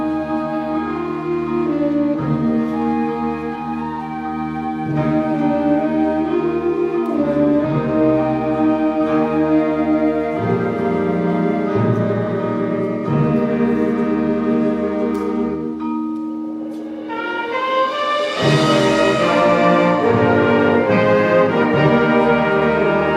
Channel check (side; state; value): both; identical; correlation 1.00